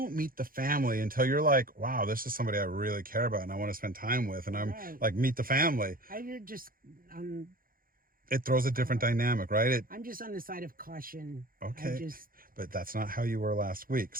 meet the family until you're like, wow, this is somebody I really care about and I want to spend time with. And I'm Right. like, meet the family. You're just on. It throws a different dynamic, right? I'm just on the side of caution. Okay. I just. But that's not how you were last week.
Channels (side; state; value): left; late; 0.41 ms